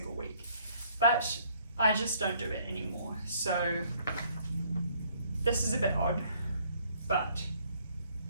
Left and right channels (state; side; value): inverted; both; correlation -0.63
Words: week, but I just don't do it anymore. So this is a bit odd, but